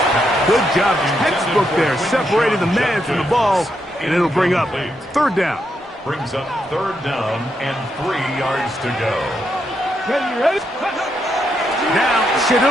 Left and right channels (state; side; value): normal; both; correlation 0.80